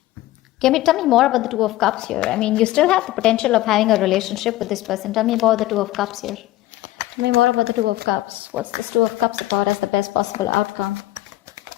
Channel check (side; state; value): right; quieter; 15.9 dB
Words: Tell me more about the Two of Cups here. I mean, you still have the potential of having a relationship with this person. Tell me about the Two of Cups here. Tell me more about the Two of Cups. What's this Two of Cups about as the best possible outcome?